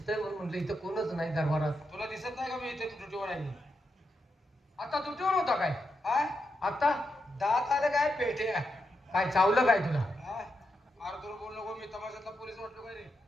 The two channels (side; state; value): both; normal; correlation 0.84